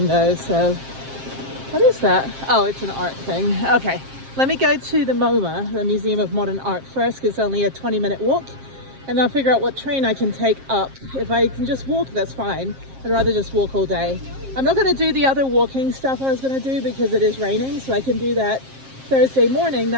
though, so what is that? Oh, it's an art thing. Okay, let me go to the MoMA, the Museum of Modern Art first, because it's only a 20-minute walk, and I'll figure out what train I can take up. If I can just walk, that's fine. I'd rather just walk all day. I'm not going to do the other walking stuff I was going to do because it is raining, so I can do that Thursday morning.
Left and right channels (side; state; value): left; late; 7.5 ms